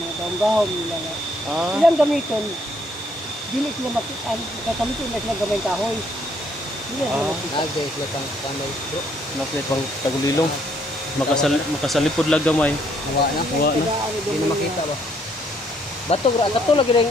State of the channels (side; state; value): both; normal; correlation 0.68